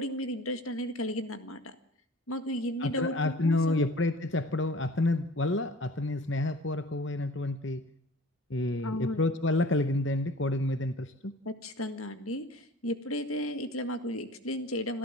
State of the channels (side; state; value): both; normal; correlation 0.45